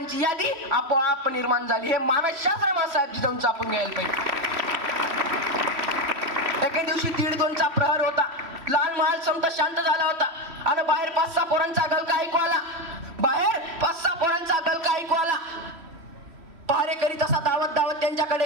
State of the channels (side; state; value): left; late; 3.1 ms